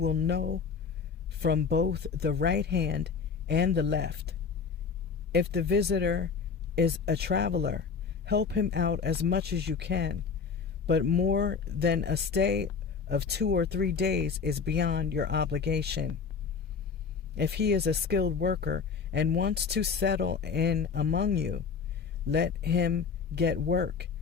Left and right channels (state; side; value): quieter; right; 5.7 dB